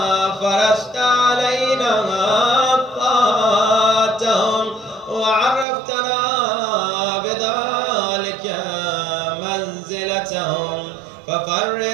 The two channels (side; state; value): left; drops out; at 5.7 s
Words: فرشت علينا طاعتهم وعرفتنا بذلك منزلتهم